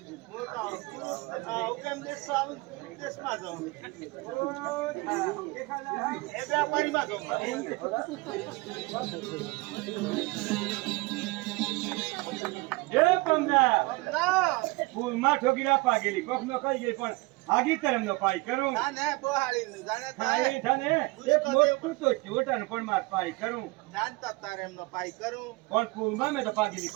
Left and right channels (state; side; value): quieter; left; 23.7 dB